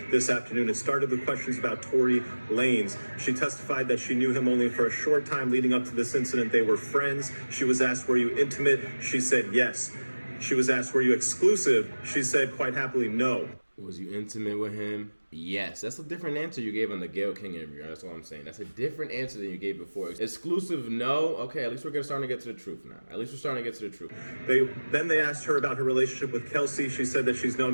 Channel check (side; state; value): both; inverted; correlation -1.00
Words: this afternoon. It started with questions about Tory Lanez. She testified that she knew him only for a short time leading up to this incident. They were friends. She was asked, were you intimate? She said yes. She was asked, were you exclusive? She said quite happily no. Was you intimate with him? Yes. That's a different answer you gave on the Gayle King interview. That's what I'm saying. That's a different answer than you gave before. Exclusive, no. Okay, at least we're starting to get to the truth now. At least we're starting to get to the truth. Then they asked her about her relationship with Kelsey. She said that she's